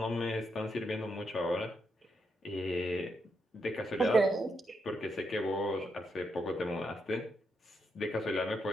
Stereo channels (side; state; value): both; normal; correlation 0.80